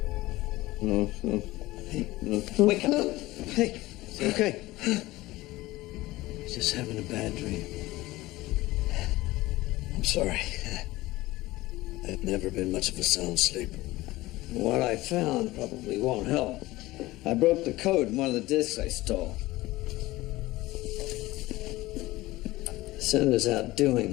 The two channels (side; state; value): right; quieter; 18.6 dB